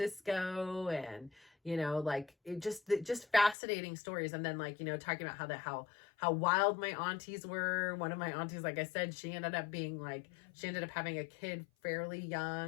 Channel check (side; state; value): right; drops out; at 3.6 s